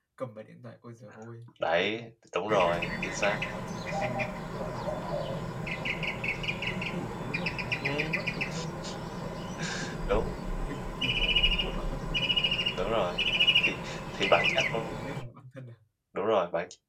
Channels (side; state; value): both; identical; correlation 1.00